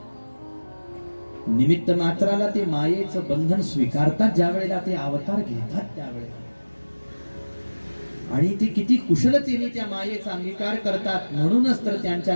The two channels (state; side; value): inverted; both; correlation -1.00